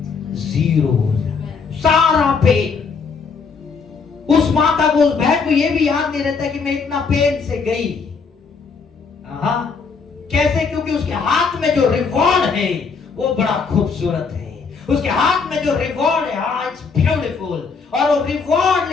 0 हो जाता है। सारा पेन। उस माता को, उस बहन को ये भी याद नहीं रहता कि मैं इतना पेन से गई। कैसे? क्योंकि उसके हाथ में जो रिवॉर्ड है वो बड़ा खूबसूरत है। उसके हाथ में जो रिवॉर्ड है, इट्स ब्यूटीफुल। और वो रिवॉर्ड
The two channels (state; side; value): quieter; right; 5.2 dB